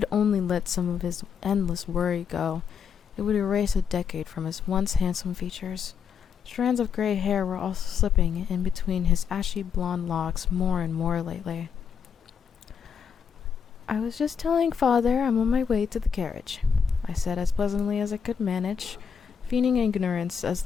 only let some of his endless worry go, it would erase a decade from his once handsome features. Strands of gray hair were also slipping in between his ashy blonde locks more and more lately. "I was just telling father I'm on my way to the carriage," I said as pleasantly as I could manage, feigning ignorance as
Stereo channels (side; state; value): right; quieter; 7.0 dB